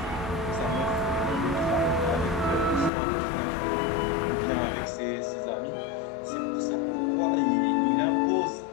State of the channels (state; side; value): drops out; right; at 2.9 s